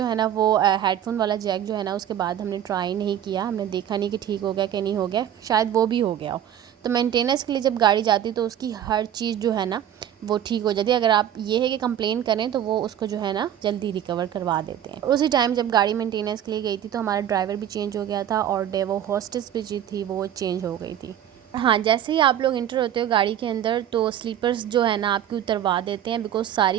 है ना वो हेडफोन वाला जैक जो है ना उसके बाद हमने ट्राई नहीं किया, हमने देखा नहीं कि ठीक हो गया कि नहीं हो गया, शायद वो भी हो गया हो। तो मेंटेनेंस के लिए जब गाड़ी जाती तो उसकी हर चीज़ जो है ना वो ठीक हो जाती है। अगर आप ये है कि कंप्लेन करें तो वो उसको जो है ना जल्दी रिकवर करवा देते हैं। उसी टाइम जब गाड़ी मेंटेनेंस के लिए गई थी तो हमारा ड्राइवर भी चेंज हो गया था, और डेवो हॉस्टेस भी जी थी वो चेंज हो गई थी। हाँ, जैसे ही आप लोग इंटर होते हो गाड़ी के अंदर तो स्लीपर्स जो है ना आपकी उतरवा देते हैं, बिकॉज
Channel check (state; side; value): quieter; left; 10.4 dB